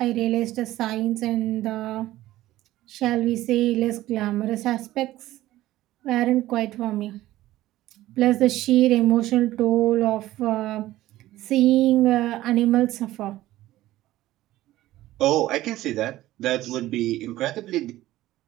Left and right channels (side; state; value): left; quieter; 15.6 dB